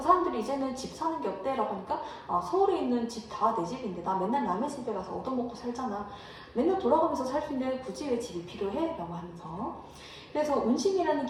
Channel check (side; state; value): both; identical; correlation 1.00